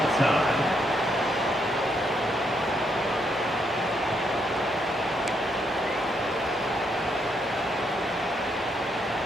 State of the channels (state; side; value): normal; both; correlation 0.76